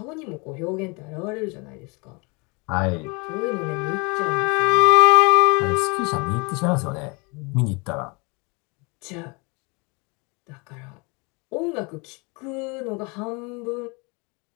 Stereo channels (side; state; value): right; quieter; 29.6 dB